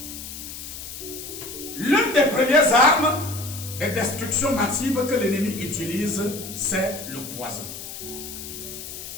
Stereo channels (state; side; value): noise; left; hiss, 10 dB below the sound